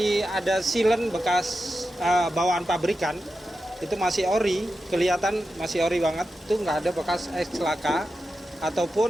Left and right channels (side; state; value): both; normal; correlation 0.91